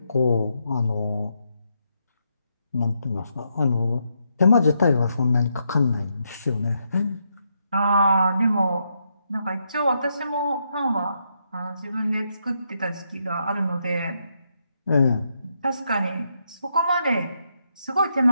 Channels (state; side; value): inverted; both; correlation -0.80